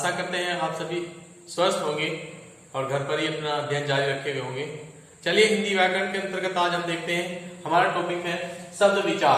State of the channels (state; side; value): identical; both; correlation 1.00